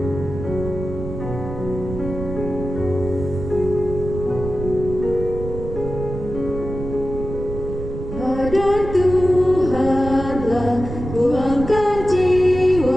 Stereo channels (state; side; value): noise; right; rumble, 8 dB below the sound